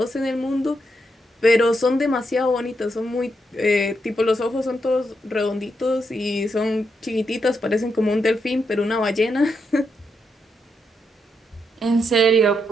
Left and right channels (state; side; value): normal; both; correlation 0.81